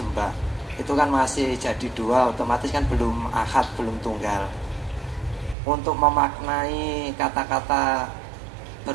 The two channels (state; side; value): drops out; left; at 5.6 s